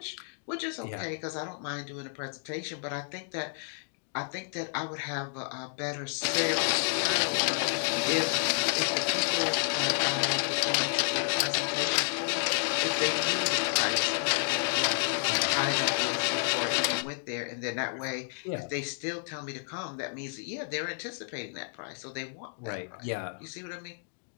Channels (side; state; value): right; silent; digital silence